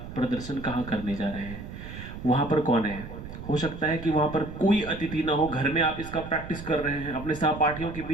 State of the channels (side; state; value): right; noise; rumble, 11 dB below the sound